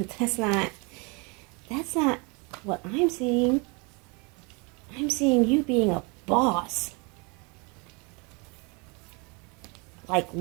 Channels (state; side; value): quieter; left; 30.6 dB